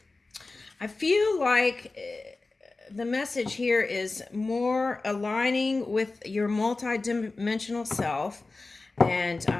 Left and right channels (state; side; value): quieter; right; 3.5 dB